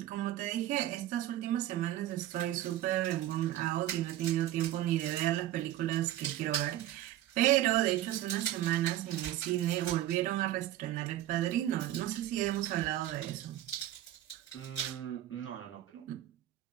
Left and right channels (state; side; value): quieter; left; 13.4 dB